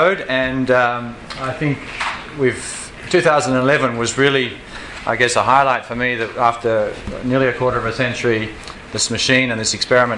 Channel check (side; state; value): both; identical; correlation 1.00